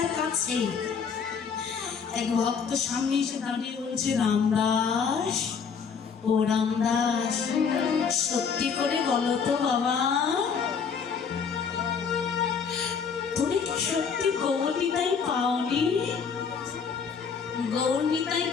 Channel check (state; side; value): quieter; right; 6.2 dB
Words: আর কাছে। এক ভক্ত সামনে এসে দাঁড়িয়ে বলছে, রামদাস, ও রামদাস, সত্যি করে বলো তো বাবা, তুমি কি সত্যি গৌরনিতাই পাওনি? গৌরনিতাই